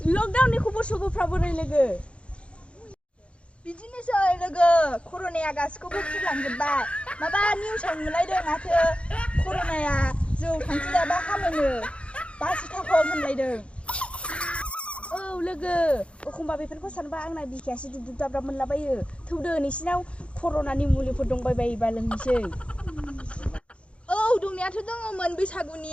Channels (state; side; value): late; right; 0.060 ms